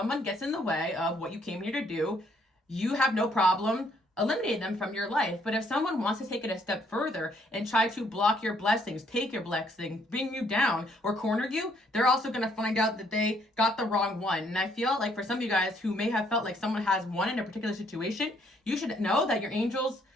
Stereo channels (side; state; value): both; normal; correlation 0.68